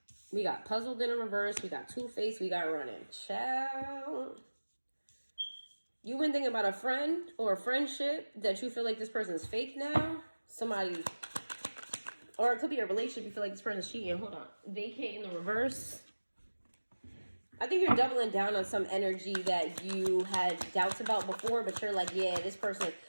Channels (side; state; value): both; inverted; correlation -1.00